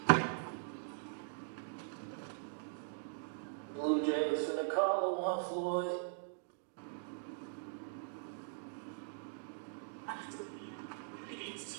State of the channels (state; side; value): silent; left; digital silence